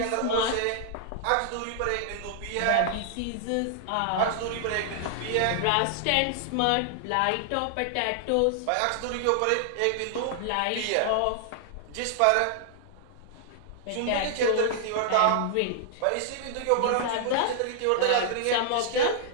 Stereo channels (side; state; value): both; different; correlation -0.01